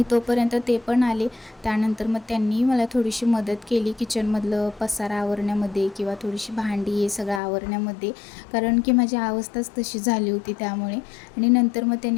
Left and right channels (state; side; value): drops out; right; at 7.4 s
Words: तोपर्यंत ते पण आले, त्यानंतर मग त्यांनी मला थोडीशी मदत केली किचनमधलं पसारा आवरण्यामध्ये किंवा थोडीशी भांडी हे सगळं आवरण्यामध्ये, कारण की माझी अवस्थाच तशी झाली होती त्यामुळे। आणि नंतर मग